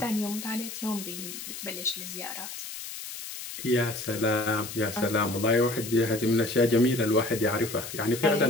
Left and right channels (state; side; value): noise; left; hiss, 9 dB below the sound